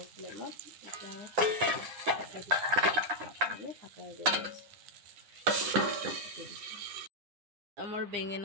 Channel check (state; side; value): late; left; 9.9 ms